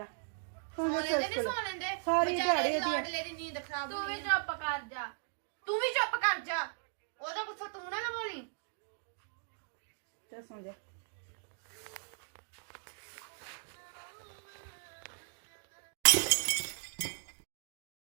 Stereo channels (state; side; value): silent; left; digital silence